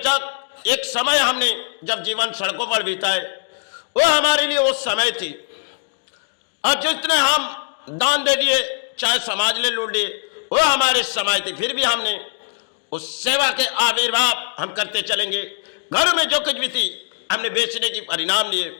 एक समय हमने जब जीवन सड़कों पर बिताए वो हमारे लिए वो समय थी, और जितने हम दान दे दिए चाहे समाज ले लूट लिए वो हमारे समय थी। फिर भी हमने उस सेवा के आविर्भाव हम करते चलेंगे। घरों में जो कुछ भी थी हमने बेचने की परिणाम लिए।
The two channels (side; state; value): right; silent; digital silence